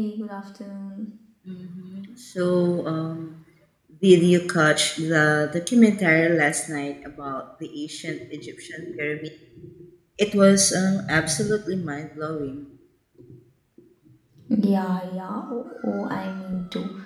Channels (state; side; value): identical; both; correlation 1.00